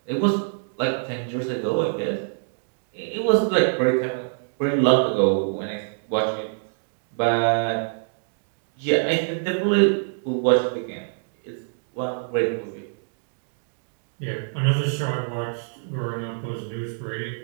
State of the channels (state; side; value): silent; left; digital silence